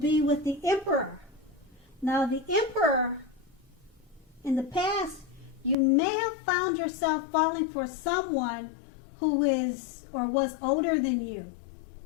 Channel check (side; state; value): right; drops out; at 5.8 s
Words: with the Emperor. Now, the Emperor, in the past, you may have found yourself falling for someone who is or was older than you.